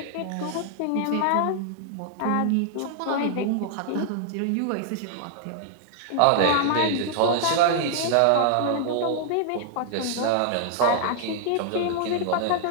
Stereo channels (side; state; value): both; different; correlation -0.01